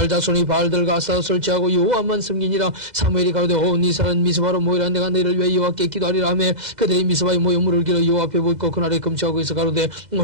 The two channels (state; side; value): late; left; 2.0 ms